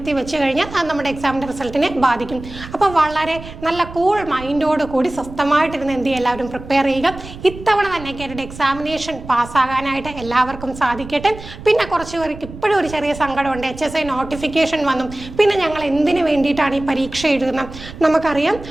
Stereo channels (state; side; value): noise; right; rumble, 14 dB below the sound